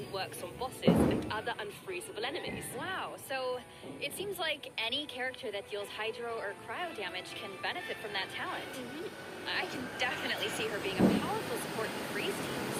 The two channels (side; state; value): both; identical; correlation 1.00